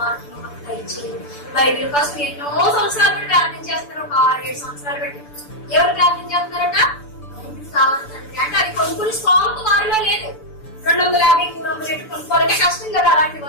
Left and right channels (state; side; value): late; right; 6.9 ms